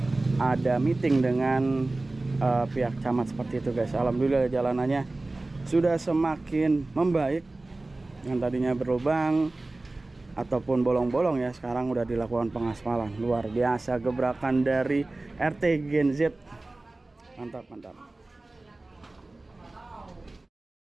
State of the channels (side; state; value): left; quieter; 3.0 dB